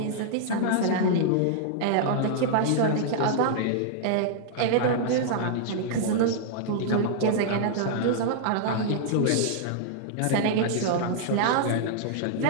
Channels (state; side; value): different; both; correlation -0.01